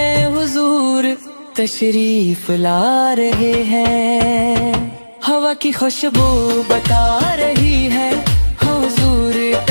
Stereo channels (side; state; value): both; inverted; correlation -1.00